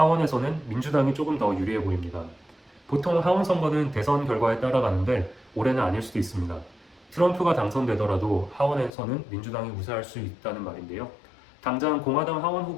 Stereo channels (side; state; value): right; drops out; at 8.9 s